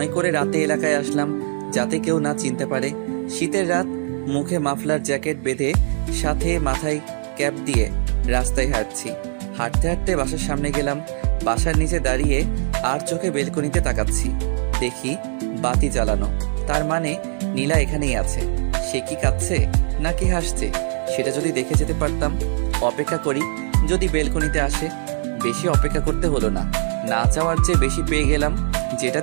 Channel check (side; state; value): left; silent; 58 dB below the other